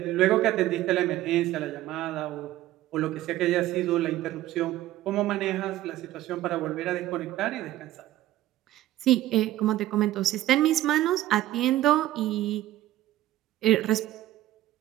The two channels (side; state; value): left; quieter; 14.8 dB